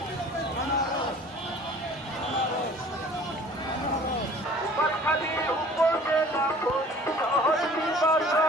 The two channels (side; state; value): both; normal; correlation 0.49